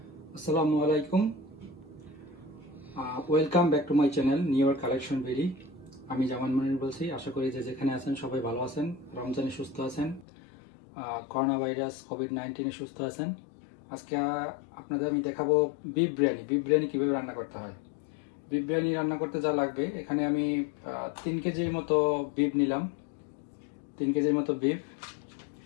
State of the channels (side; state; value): right; drops out; at 10.2 s